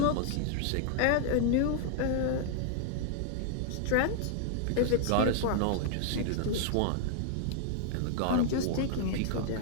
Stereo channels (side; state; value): both; different; correlation -0.01